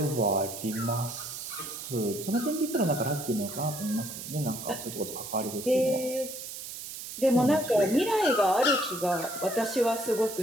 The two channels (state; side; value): noise; right; hiss, 9 dB below the sound